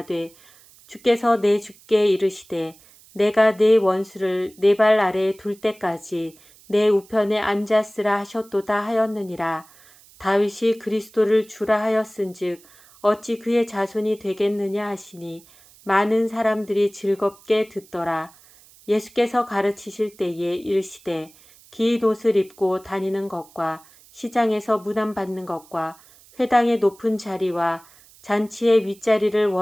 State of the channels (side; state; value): right; noise; hiss, 26 dB below the sound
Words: 주께서 내 주께 이르시되 내가 내 원수를 내 발 아래에 둘 때까지 내 우편에 앉았으라 하셨도다 하였느니라. 다윗이 그리스도를 주라 하였은즉 어찌 그의 자손이 되겠느냐 하시니 많은 사람들이 즐겁게 듣더라. 예수께서 가르치실 때에 이르시되 긴 옷을 입고 다니는 것과 시장에서 문안받는 것과 회당의 높은 자리와 잔치의 윗자리를